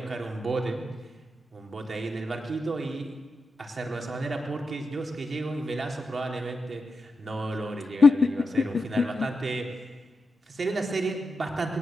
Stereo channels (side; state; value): both; normal; correlation 0.88